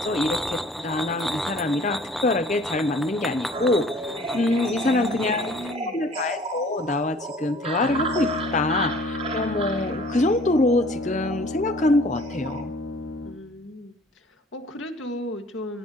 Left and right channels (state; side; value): normal; both; correlation 0.52